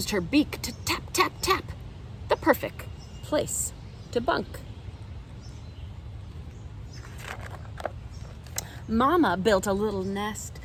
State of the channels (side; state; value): both; identical; correlation 1.00